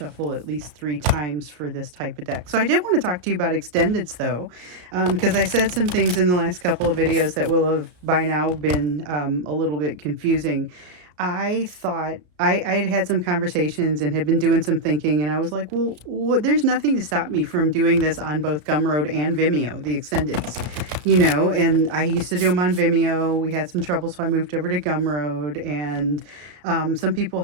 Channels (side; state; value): left; late; 33 ms